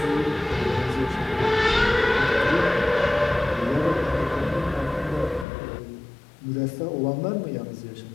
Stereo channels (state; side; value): drops out; right; at 5.5 s